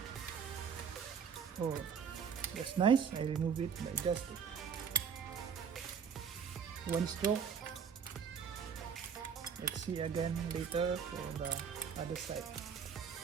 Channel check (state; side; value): quieter; left; 6.9 dB